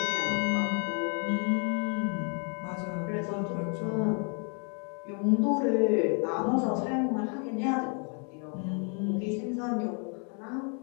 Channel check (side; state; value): right; quieter; 39.4 dB